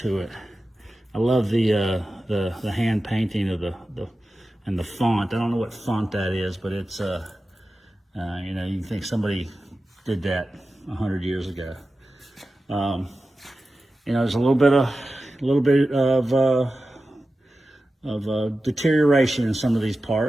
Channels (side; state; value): both; normal; correlation 0.93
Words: it. I love the hand painting of and the font. I don't know what font that is, but it's you can think somebody did that 100 years ago. There's a little bit of deterioration in some of these